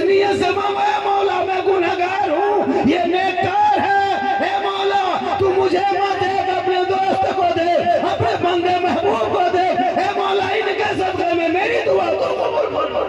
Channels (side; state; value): both; identical; correlation 1.00